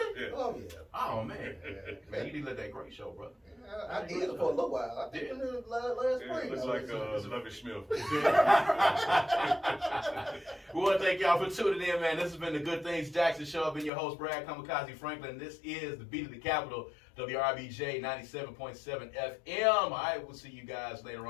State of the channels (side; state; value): right; drops out; at 13.9 s